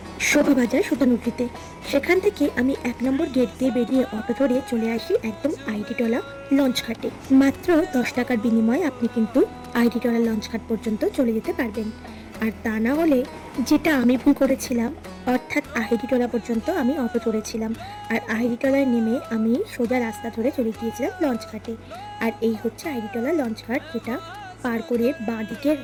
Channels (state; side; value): identical; both; correlation 1.00